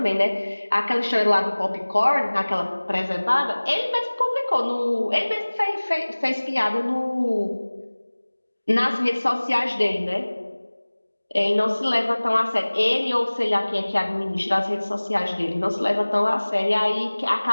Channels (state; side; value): inverted; both; correlation -1.00